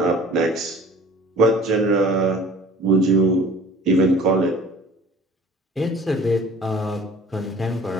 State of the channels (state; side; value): normal; both; correlation 0.47